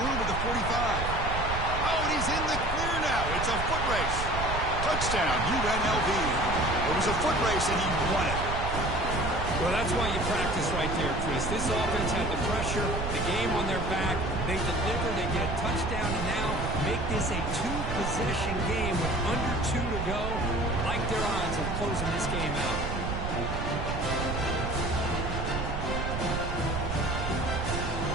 at the 45. Oh, and he's in the clear now. It's a foot race. Touchdown, UNLV. It was a foot race, and he won it. Well, that's why you practice right there, Chris. This offense had the pressure, the game on their back. They deliver, they get a touchdown, and now make this a 2-possession game with under 2 to go. Like their odds of closing this game out.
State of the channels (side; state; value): right; noise; rumble, 4 dB below the sound